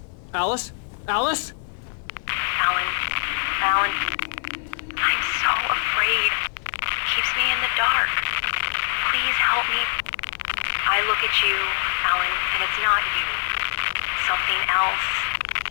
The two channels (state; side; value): silent; right; 55 dB below the other